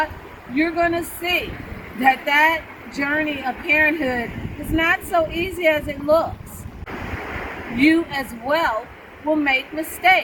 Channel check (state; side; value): identical; both; correlation 1.00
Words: you're going to see that that journey of parenthood is not so easy as it looks. You as well will make